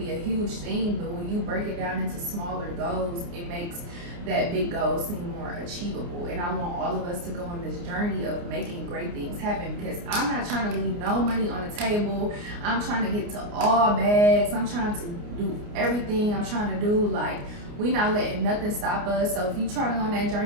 a huge thing, but when you break it down into smaller goals, it makes that big goal seem more achievable. And I want all of us to go on this journey of making great things happen, because I'm not trying to leave no money on the table. I'm trying to get to all bags. I'm trying to do everything I'm trying to do. Like, we not letting nothing stop us. So if you're trying to go on that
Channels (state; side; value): late; left; 29 ms